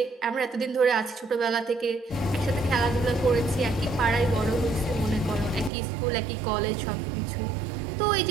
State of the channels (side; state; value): left; drops out; at 5.7 s